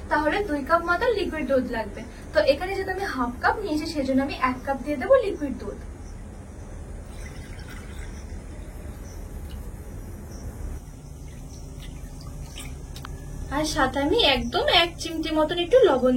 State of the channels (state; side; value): identical; both; correlation 1.00